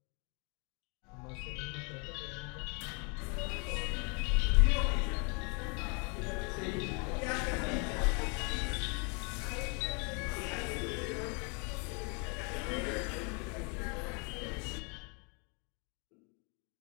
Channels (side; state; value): right; quieter; 34.2 dB